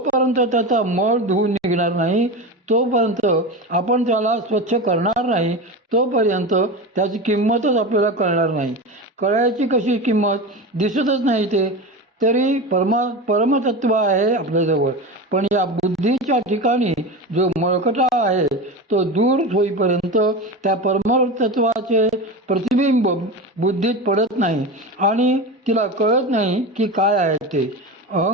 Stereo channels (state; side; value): normal; both; correlation 0.25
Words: त्याचा मळ धुवून निघणार नाही, तोपर्यंत आपण त्याला स्वच्छ करणार नाही, तोपर्यंत त्याची किंमतच आपल्याला कळणार नाही. कळायची कशी किंमत? दिसतच नाही ते. तरी परमतत्व आहे आपल्याजवळ. पण या बुद्धीच्या ठिकाणी जो मळकटा आहे तो दूर होईपर्यंत त्या परमतत्वाचे प्रतिबिंब बुद्धीत पडत नाही आणि तिला कळत नाही की काय आहे ते.